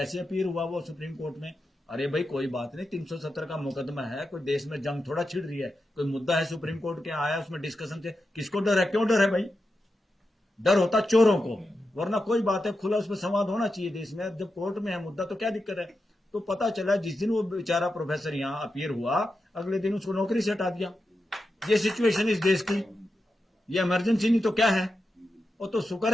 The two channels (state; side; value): normal; both; correlation 0.89